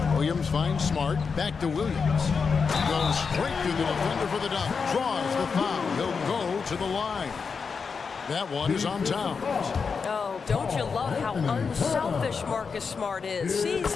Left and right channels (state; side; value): quieter; right; 5.4 dB